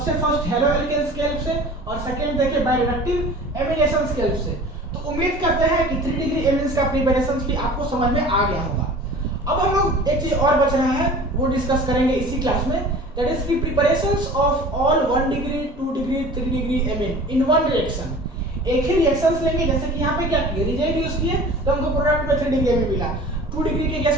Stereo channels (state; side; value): normal; both; correlation 0.42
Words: फर्स्ट हेलो एल्केन्स के हेल्प से, और सेकंड देखे बायरिडक्टिव एमिनेशन के हेल्प से. तो उम्मीद करते हैं कि 3 डिग्री एमिनेंस का प्रिपरेशन भी आपको समझ में आ गया होगा. अब हम लोग एक चीज और बच रहा है, वो डिस्कस करेंगे इसी क्लास में, दैट इज की preparations of all 1 degree 2 degree 3 degree amine in one reaction. एक ही रिएक्शंस लेंगे. जैसे कि यहाँ पे क्या किए, रिएजेंट यूज किए तो हमको प्रोडक्ट में 3 डिग्री एमिन मिला. 2 डिग्री के केस